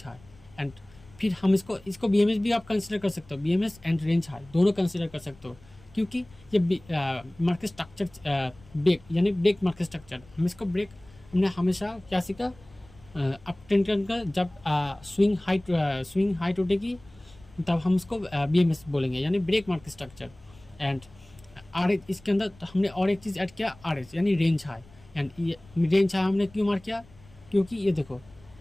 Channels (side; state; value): left; noise; rumble, 25 dB below the sound